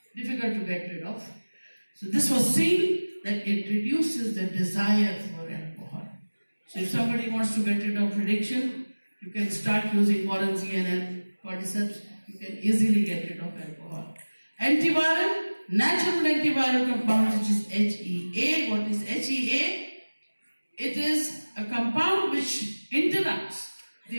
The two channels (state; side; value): inverted; both; correlation -1.00